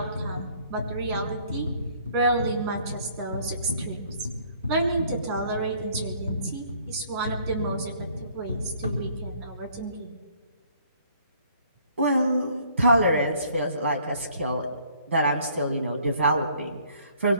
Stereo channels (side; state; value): both; inverted; correlation -0.60